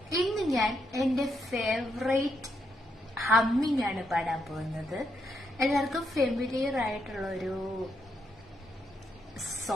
ഇന്ന് ഞാൻ എൻ്റെ ഫേവറേറ്റ് ഹമ്മിങ് ആണ് പാടാൻ പോകുന്നത്. എല്ലാവർക്കും ഫെമിലിയർ ആയിട്ടുള്ള ഒരു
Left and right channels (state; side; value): normal; both; correlation 0.79